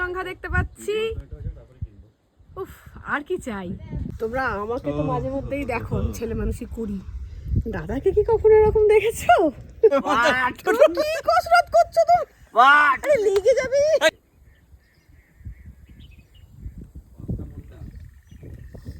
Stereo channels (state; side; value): identical; both; correlation 1.00